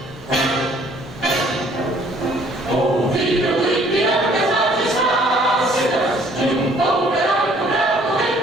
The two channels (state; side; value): normal; both; correlation 0.59